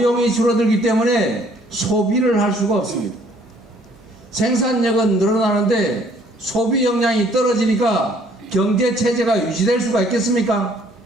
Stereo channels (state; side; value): normal; both; correlation 0.60